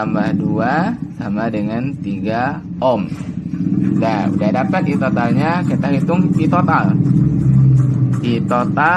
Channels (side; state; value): both; identical; correlation 1.00